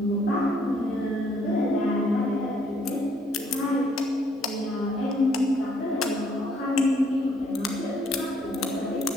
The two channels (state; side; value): normal; both; correlation 0.67